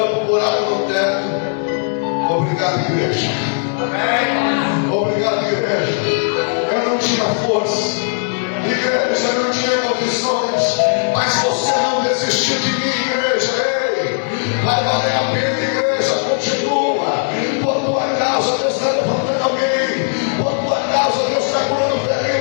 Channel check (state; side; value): silent; right; digital silence